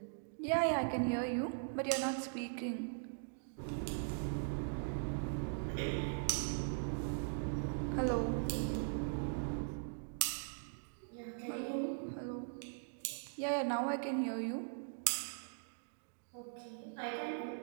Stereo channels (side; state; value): left; silent; digital silence